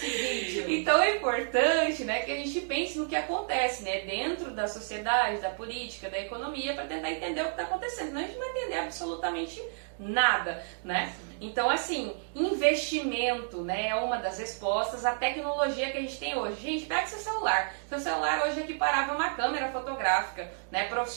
vídeo. Então é importante, né, que a gente pense no que acontece, né, dentro da sociedade, da política, da economia, para tentar entender o que está acontecendo. Senão a gente não vai entender absolutamente nada, né? Então, assim, investimento, né, é uma das respostas. A tecnologia que a gente tem hoje. Gente, pega seu celular. Seu celular hoje é equiparável a uma câmera fotográfica, né,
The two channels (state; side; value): silent; left; digital silence